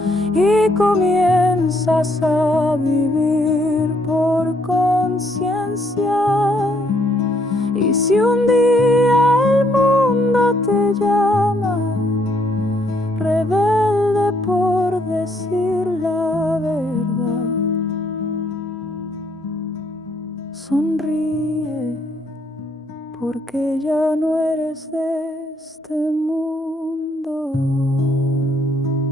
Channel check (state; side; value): normal; both; correlation 0.70